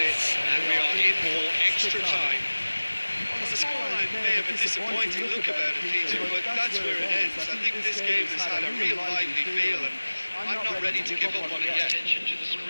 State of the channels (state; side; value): inverted; both; correlation -1.00